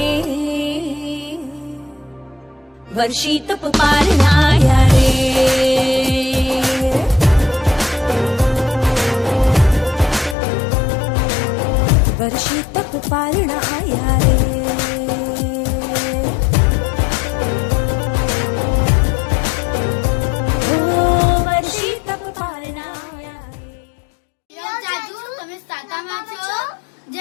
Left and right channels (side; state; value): right; drops out; at 10.4 s